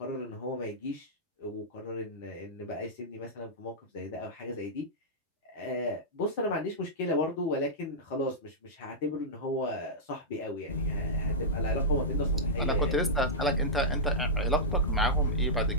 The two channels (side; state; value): both; normal; correlation -0.11